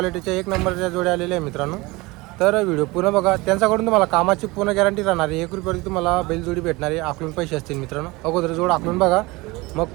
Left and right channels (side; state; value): left; quieter; 22.9 dB